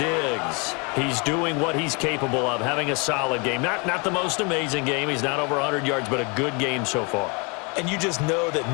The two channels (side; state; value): right; quieter; 31.8 dB